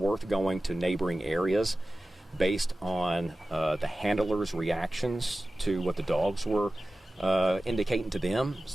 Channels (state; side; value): normal; both; correlation 0.95